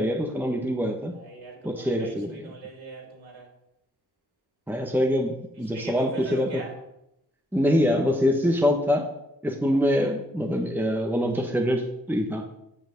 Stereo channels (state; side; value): normal; both; correlation 0.75